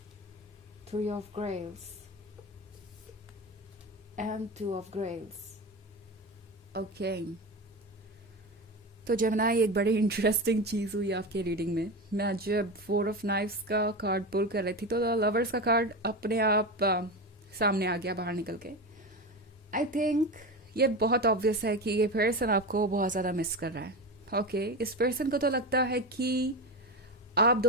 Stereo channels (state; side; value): normal; both; correlation 0.22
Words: Three of Grails, and Two of Grails. Okay. तो जेमिनी, एक बड़ी इंटरेस्टिंग चीज़ हुई आपके रीडिंग में। मैं जब फोर ऑफ नाइफ्स का कार्ड पुल कर रही थी तो लवर्स का कार्ड अपने आप सामने आ गया बाहर निकल के। आई थिंक ये बहुत ऑब्वियस है कि ये पर्सन आपको बहुत ज़्यादा मिस कर रहा है। ओके, इस पर्सन को तो लगता है कि आप